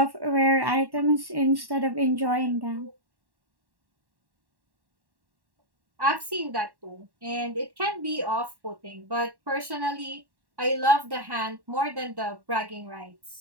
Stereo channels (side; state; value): left; late; 1.1 ms